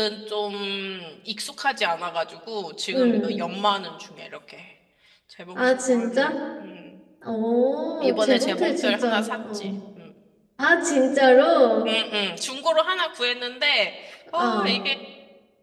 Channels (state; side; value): identical; both; correlation 1.00